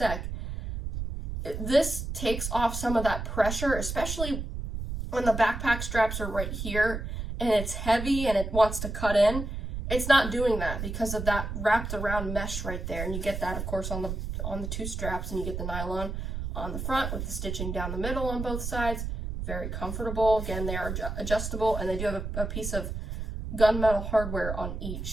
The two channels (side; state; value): right; noise; rumble, 5 dB below the sound